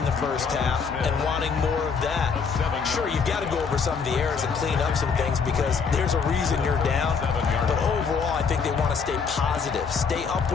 the first half and wanting more of that. Sure, you've got to go over some of the errors and clean up some things because there's a reason you're down. But overall, I think they want to stay positive, stay up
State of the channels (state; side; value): quieter; right; 5.7 dB